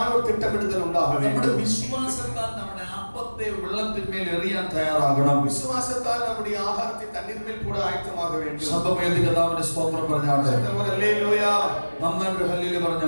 ஒரு திட்டமிடுதல் உண்டாக നമ്മുടെ வேண்டும். വിശ്വാസത്താൽ നമ്മുടെ അപ്പത്തെ വെള്ളത്തിന്മേൽ എറിയാൻ തയ്യാറാകണം. വിശ്വാസത്താൽ നമ്മുടെ ആഹാരത്തെ തണ്ണീർമേൽ കൂടെ ആയത്തമാക വേണ്ടി ശബ്ദമേന്തി കർത്താവിന്റെ സ്തോത്രം പറഞ്ഞാട്ടെ. ഹല്ലേലൂയ. നന്നായിട്ട് ഹല്ലേലൂയ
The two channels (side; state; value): both; inverted; correlation -1.00